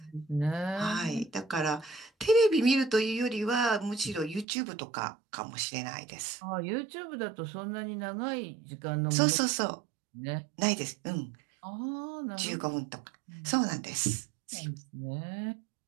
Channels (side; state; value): left; drops out; at 4.5 s